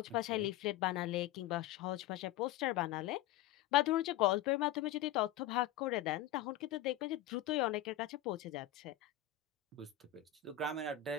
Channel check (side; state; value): right; quieter; 12.6 dB